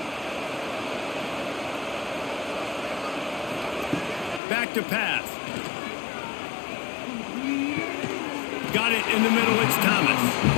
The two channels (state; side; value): drops out; right; at 4.4 s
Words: Back to pass. Got it in the middle, it's Thomas.